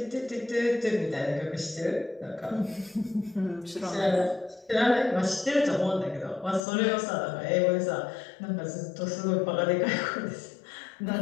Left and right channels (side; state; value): right; drops out; at 6.7 s